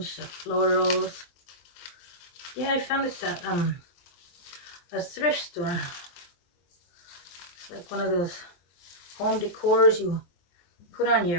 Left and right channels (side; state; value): right; late; 23 ms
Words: the florals. Yeah, I found this at a thrift store. It's like one of those home decors you put on